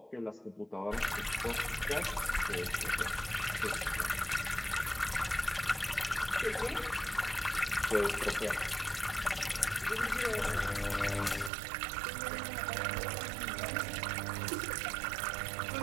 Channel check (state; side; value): drops out; left; at 11.5 s